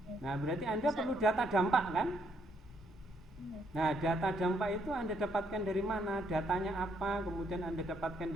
Nah, berarti Anda perlu data dampak kan? Nah, data dampak itu Anda dapatkan dari mana? Datanya apa? Kemudian Anda dapatkan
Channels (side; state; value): both; normal; correlation 0.72